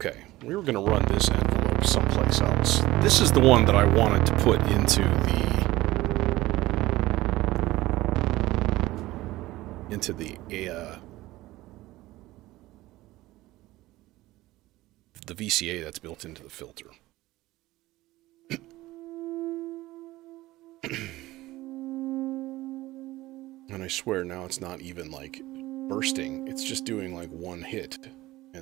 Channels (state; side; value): quieter; left; 17.7 dB